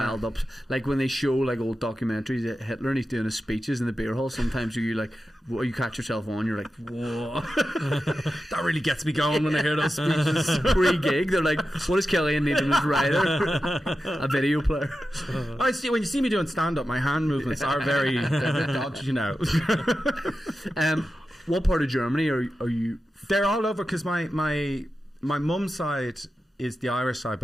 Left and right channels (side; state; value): both; normal; correlation 0.92